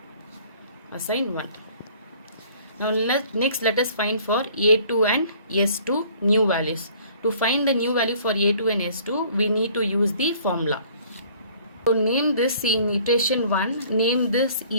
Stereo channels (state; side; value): inverted; both; correlation -0.55